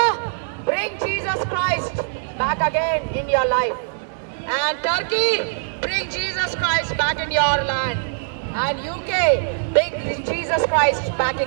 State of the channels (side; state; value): left; silent; 61 dB below the other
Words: bring Jesus Christ back again in your life. And Turkey, bring Jesus Christ back in your land. And UK, bring Jesus Christ back